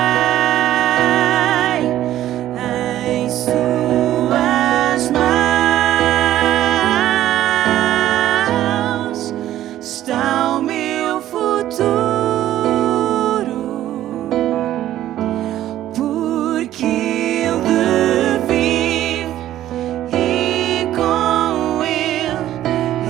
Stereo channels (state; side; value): quieter; left; 13.1 dB